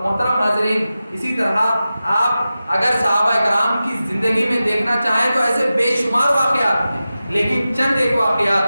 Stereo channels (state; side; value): inverted; both; correlation -0.94